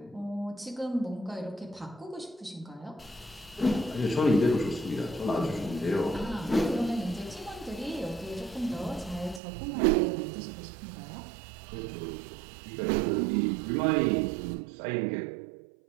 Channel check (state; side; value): drops out; left; at 9.4 s